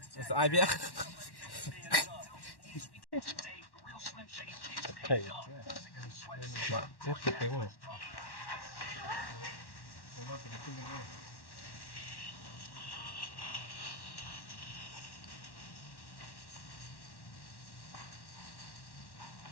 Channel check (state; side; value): late; right; 1.1 ms